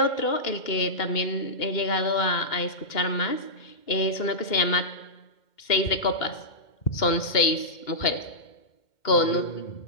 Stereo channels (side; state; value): right; late; 2.1 ms